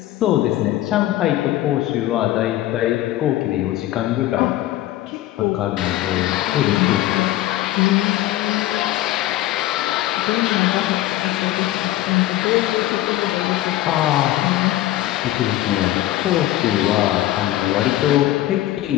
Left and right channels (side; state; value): right; quieter; 14.8 dB